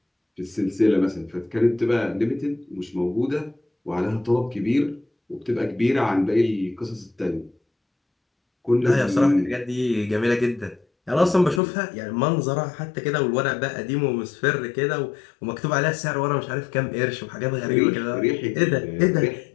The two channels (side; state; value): right; drops out; at 11.6 s